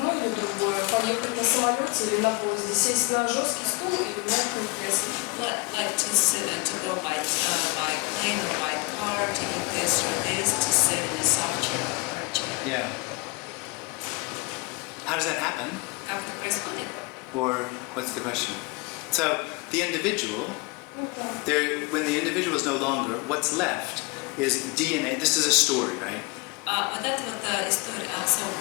или другое, поехать на самолете или на поезде, сесть на жесткий стул или в мягкое кресло. like to go by plane or by car, to eat this or this, to sit in a soft chair or hard chair. Yeah. How does that happen? Как это происходит? Or what's the question? So the individual, when the individual is no longer, what's left is DNA. This is a story, right? Вот это вот история. So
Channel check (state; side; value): quieter; right; 28.1 dB